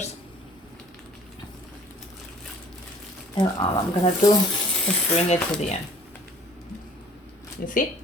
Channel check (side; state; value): both; normal; correlation 0.52